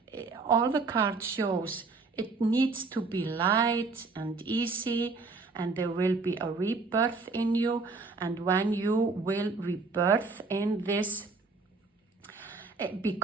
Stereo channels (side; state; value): left; quieter; 4.0 dB